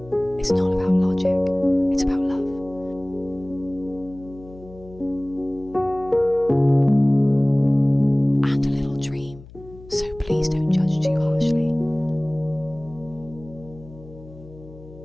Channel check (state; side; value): noise; left; hum, 19 dB below the sound